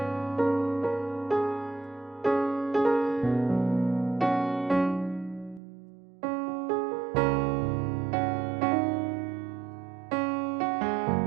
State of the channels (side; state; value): left; drops out; at 5.6 s